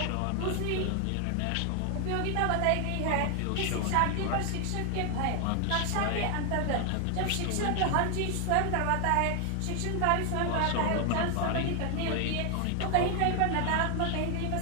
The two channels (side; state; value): both; different; correlation 0.00